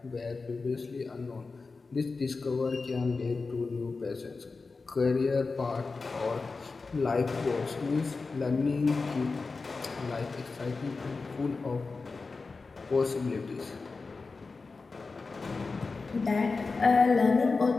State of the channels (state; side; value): quieter; right; 4.1 dB